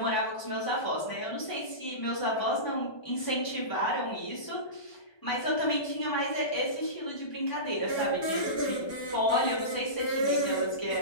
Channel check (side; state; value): right; late; 1.2 ms